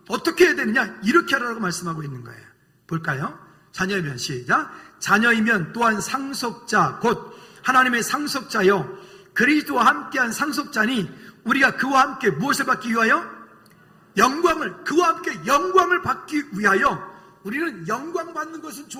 어떻게 해야 되느냐? 이렇게 하라고 말씀하고 있는 거예요. 볼까요? 자녀이면 시작. 자녀이면 또한 상속자 곧 하나님의 상속자요 그리스도와 함께한 상속자니 우리가 그와 함께 무엇을 받기 위하여? 영광을, 그와 함께 영광을 받기 위하여. 우리는 영광 받는 것은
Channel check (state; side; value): identical; both; correlation 1.00